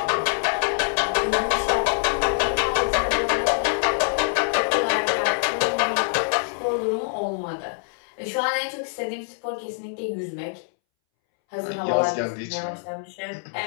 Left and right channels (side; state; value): right; silent; 62 dB below the other